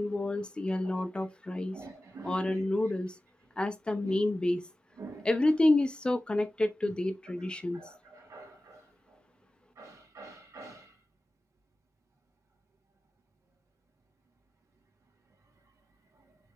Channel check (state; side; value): normal; both; correlation 0.96